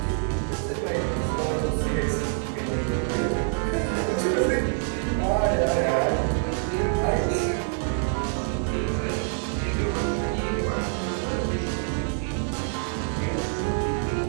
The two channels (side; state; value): left; silent; 61 dB below the other